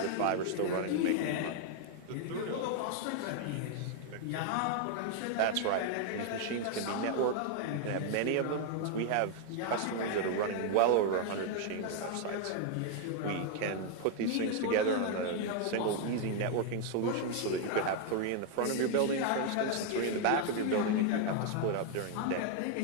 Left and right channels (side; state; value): both; different; correlation 0.00